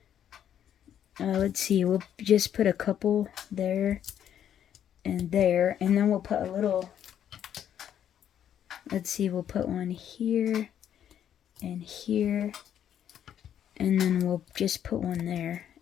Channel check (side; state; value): right; quieter; 9.8 dB